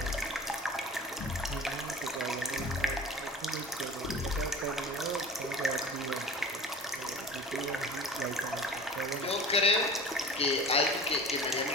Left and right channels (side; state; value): both; normal; correlation 0.38